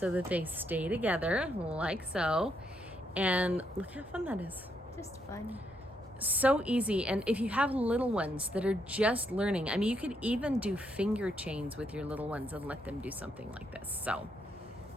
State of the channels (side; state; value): both; normal; correlation 0.77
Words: that they stay together like so, and look how fun that is. Just fun. so easy. And if you have little ones that are just learning, I mean, you could even do finger chains with your little ones and let them do something like this. So